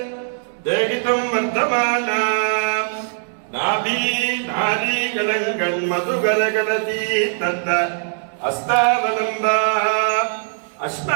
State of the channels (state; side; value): silent; left; 65 dB below the other